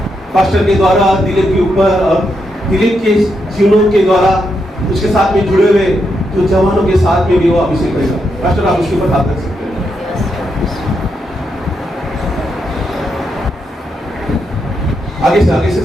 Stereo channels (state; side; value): normal; both; correlation 0.82